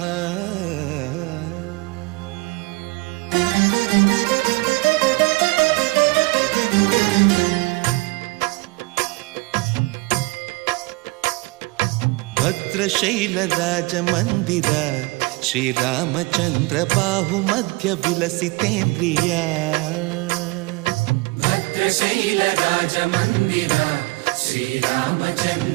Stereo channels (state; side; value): quieter; left; 24.6 dB